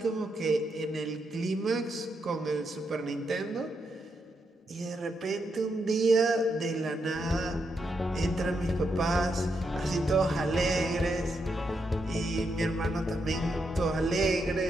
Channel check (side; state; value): both; normal; correlation 0.82